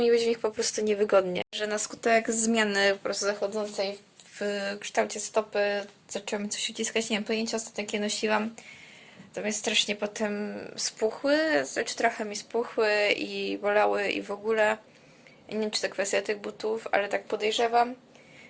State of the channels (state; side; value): identical; both; correlation 1.00